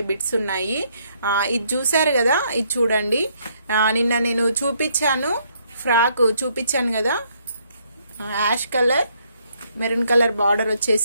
బిట్స్ ఉన్నాయి. ఇది చూసారు కదా, ఇది చూడండి. నిన్న నేను చూపించాను, ఫ్రాక్ చూపించాను కదా, ash colour maroon colour border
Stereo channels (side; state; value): both; inverted; correlation -0.70